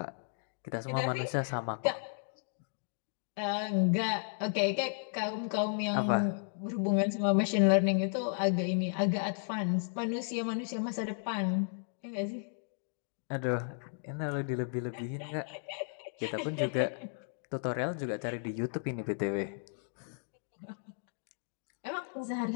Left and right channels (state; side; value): silent; right; digital silence